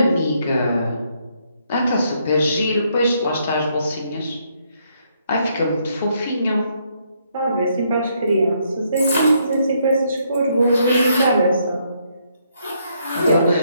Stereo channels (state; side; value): inverted; both; correlation -0.73